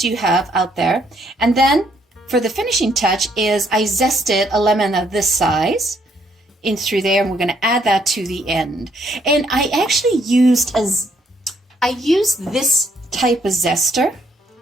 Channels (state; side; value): normal; both; correlation 0.70